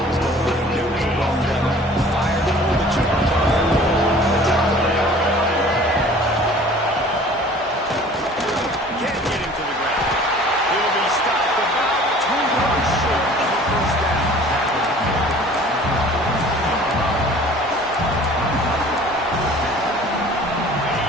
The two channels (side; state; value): both; normal; correlation 0.48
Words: was going on. He knew it was well done. Fired, pulled the trigger, came down the top of the ground. Can't get him to the ground. He'll be stopped about 2 yards short of the first down.